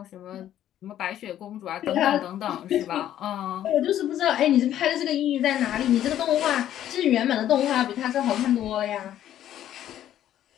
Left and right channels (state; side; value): quieter; right; 11.6 dB